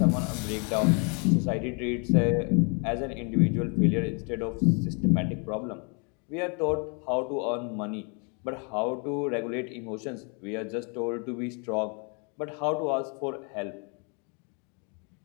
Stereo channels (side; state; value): right; quieter; 36.1 dB